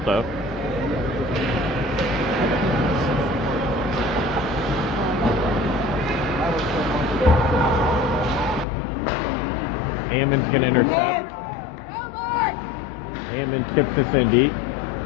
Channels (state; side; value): drops out; right; at 8.7 s